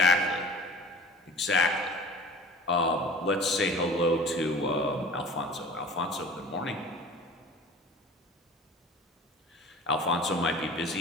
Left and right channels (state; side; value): normal; both; correlation 0.42